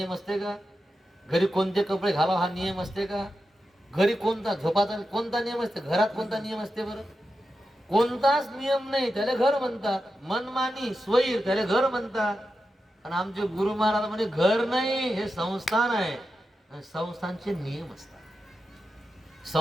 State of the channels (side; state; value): both; normal; correlation 0.90